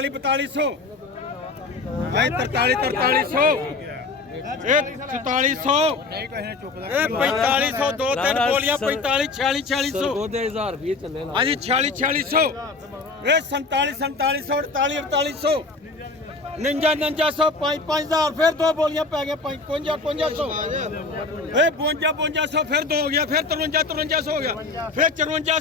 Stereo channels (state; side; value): quieter; right; 3.8 dB